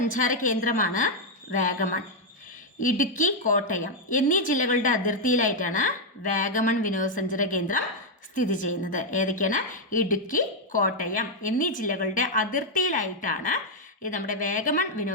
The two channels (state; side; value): normal; both; correlation 0.00